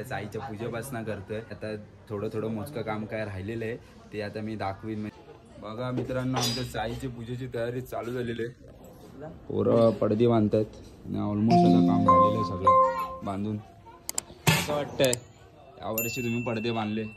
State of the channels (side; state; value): both; identical; correlation 1.00